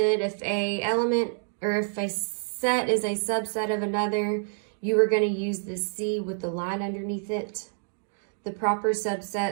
if a element or if a set is a subset of another, you are going to use the C with the line underneath it. The proper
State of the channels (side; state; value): left; silent; digital silence